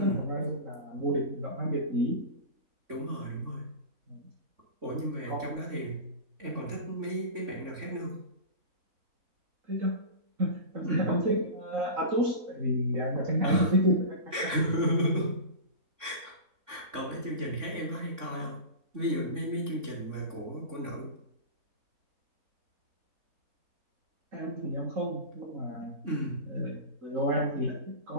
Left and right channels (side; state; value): left; late; 3.5 ms